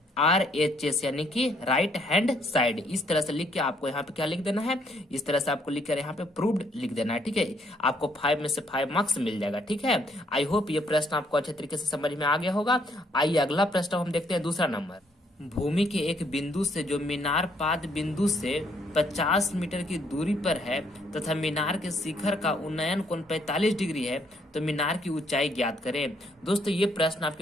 RHS यानी कि राइट हैंड साइड। इस तरह से लिख के आपको यहाँ पे क्या लिख देना है, इस तरह से आपको लिख कर यहाँ पे प्रूव्ड लिख देना है, ठीक है। आपको 5 में से 5 मार्क्स मिल जाएगा, ठीक है। आई होप ये प्रश्न आपको अच्छे तरीके से समझ में आ गया होगा। आइए अगला प्रश्न हम देखते हैं, दूसरा नंबर। भूमि के एक बिंदु से जो मीनार पाद बिंदु से 50 मीटर की दूरी पर है तथा मीनार के शिखर का उन्नयन कोण 45 डिग्री है, तो मीनार की ऊंचाई ज्ञात करें। दोस्तों ये प्रश्न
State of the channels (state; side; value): normal; both; correlation 0.69